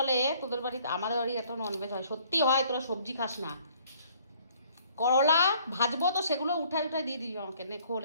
তোদের বাড়িতে, আমাদের বাড়ি এত ননভেজ হয়, সত্যি হয়, তোরা সবজি খাস না। করলা ভাজবো তো সেগুলো উঠাই দিয়ে দিবি আমাকে, নে খোল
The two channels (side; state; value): both; inverted; correlation -0.60